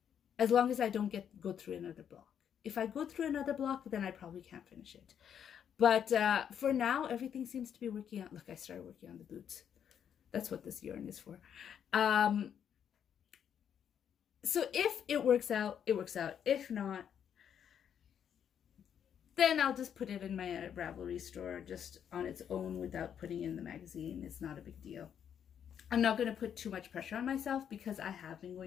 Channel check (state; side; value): quieter; right; 8.6 dB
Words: As long as I don't go through another block. If I go through another block, then I probably can't finish it. But for now, everything seems to be working out. Look, I started working on the boots. That's what this yarn is for. So if it works out, it works out. If not, then I'll just put it in my Ravelry store just on its own without putting it in the magazine. It's not a big deal. I'm not going to put too much pressure on myself because I have been